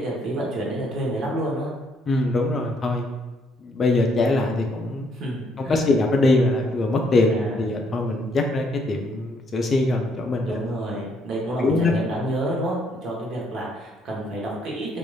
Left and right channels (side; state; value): both; normal; correlation 0.70